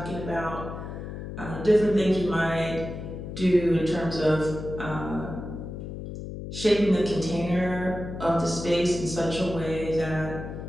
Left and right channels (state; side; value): noise; left; hum, 8 dB below the sound